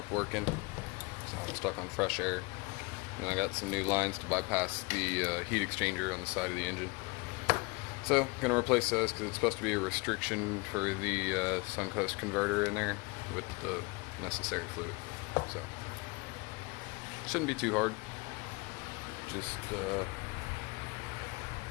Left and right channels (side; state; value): right; quieter; 26.6 dB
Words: working, so I'm stuck on fresh air. And I got some new lines to bypass the heat exchanger on the side of the engine. So, gonna replace those because it's supposed to be a restriction for the Suncoast converter in there with the necessary fluid. So, shouldn't be too hard. Just